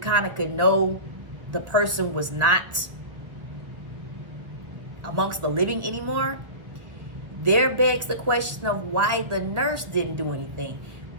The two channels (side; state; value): left; late; 1.1 ms